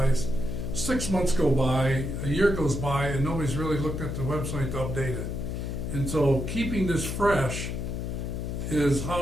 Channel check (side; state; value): left; noise; hum, 3 dB below the sound